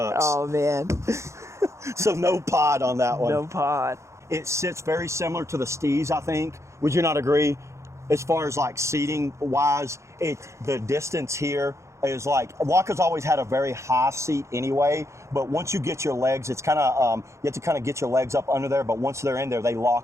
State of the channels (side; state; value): left; late; 0.14 ms